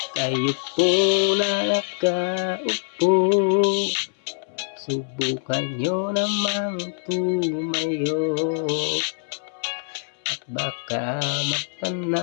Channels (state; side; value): silent; right; 63 dB below the other